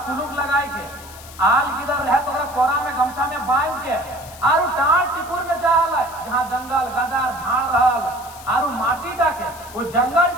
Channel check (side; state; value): left; noise; hiss, 18 dB below the sound